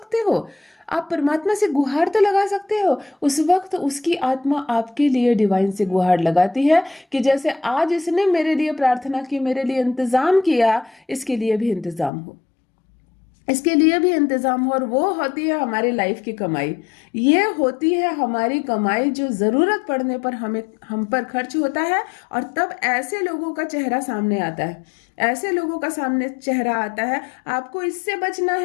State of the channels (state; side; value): drops out; right; at 12.1 s